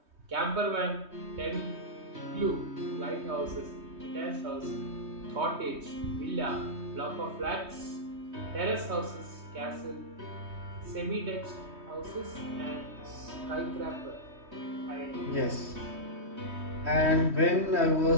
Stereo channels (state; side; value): late; left; 3.2 ms